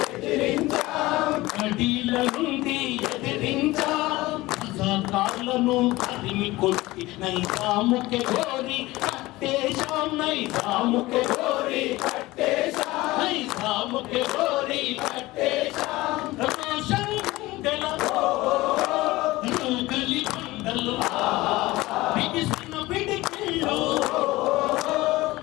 ఎదిరించాం, అడీల నుండి ఎదిరించాం. రజాకార్లను తరిమి కొట్టి నైజాముకే గోరి కట్టేశాం, నైజాముకే గోరి కట్టేశాం, నైజాముకే గోరి కట్టేశాం. రమేశం గుండెల గలి బండలు బిగిసిన పిడికిళ్ళు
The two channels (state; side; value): quieter; right; 19.2 dB